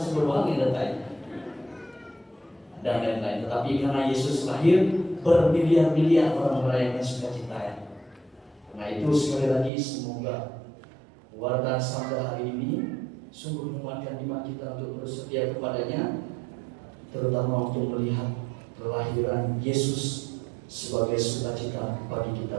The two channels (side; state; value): left; drops out; at 9.7 s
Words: yang datang. Dan lain-lain. Tetapi karena Yesus lahir, bermiliar-miliar orang merayakan sukacita ya. Nah itu sekali lagi semoga warta sabda hari ini sungguh menguatkan iman kita untuk bersetia kepadanya, terutama untuk melihat kelahiran Yesus sebagai sukacita bagi